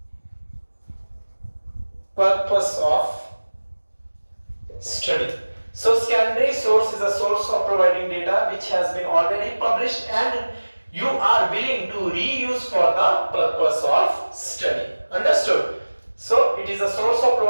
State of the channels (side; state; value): both; inverted; correlation -1.00